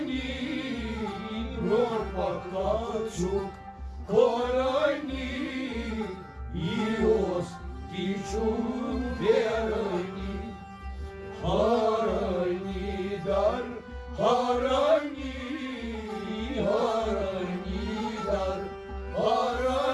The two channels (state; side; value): identical; both; correlation 1.00